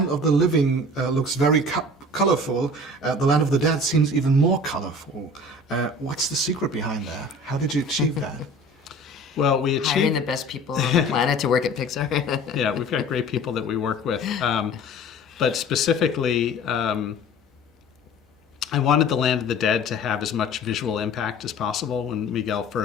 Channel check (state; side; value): normal; both; correlation 0.44